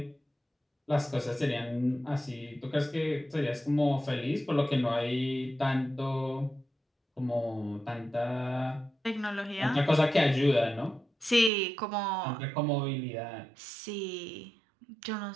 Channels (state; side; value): drops out; left; at 11.5 s